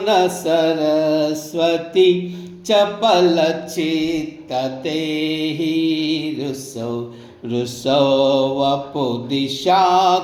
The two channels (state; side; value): identical; both; correlation 1.00